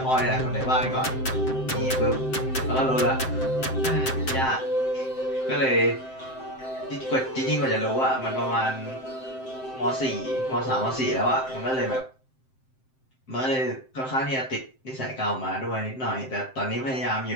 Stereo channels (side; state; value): right; late; 7.7 ms